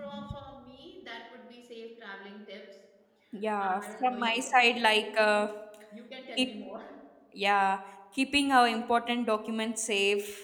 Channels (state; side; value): identical; both; correlation 1.00